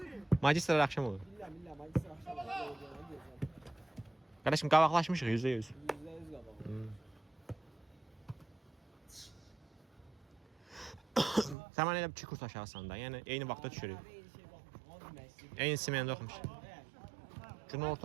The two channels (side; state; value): left; drops out; at 11.6 s